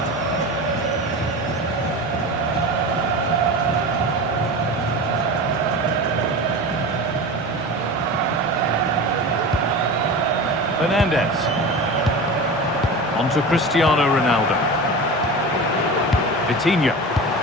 Fernandez. On to Cristiano Ronaldo. Vitinha.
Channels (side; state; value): both; normal; correlation 0.29